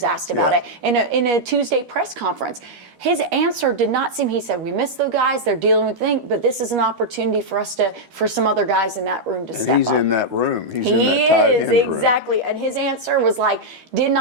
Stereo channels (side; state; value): left; late; 13 ms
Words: asked about it in a Tuesday press conference. His answer did not seem, he said, we miss the guys, they're dealing with things, but this is an opportunity for some other guys in that room to step up. He's in that room. He's in that tight end room. Exactly. And his answer was did